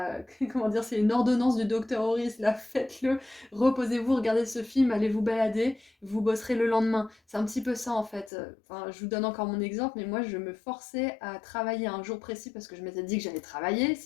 comment dire, c'est une ordonnance du docteur Horis, là, faites-le, reposez-vous, regardez ce film, allez vous balader, vous bosserez le lendemain. C'est un petit peu ça en fait. Enfin, je vous donne encore mon exemple, mais moi je me forçais à travailler un jour précis parce que je m'étais dit que j'allais travailler,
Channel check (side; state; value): right; drops out; at 8.3 s